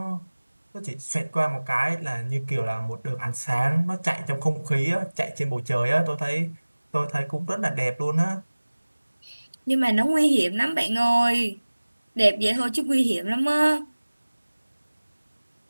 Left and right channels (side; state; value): both; inverted; correlation -1.00